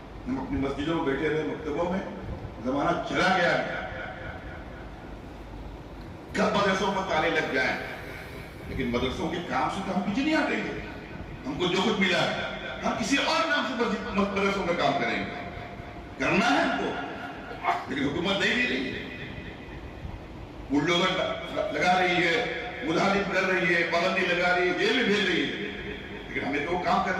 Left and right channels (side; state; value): both; identical; correlation 1.00